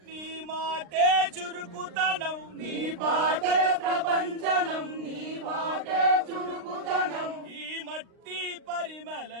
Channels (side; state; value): left; late; 39 ms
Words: నీ మాటే చురుకుతనం నీ పాటే ప్రపంచనం నీ మాటే చురుకుతనం ఈ మట్టి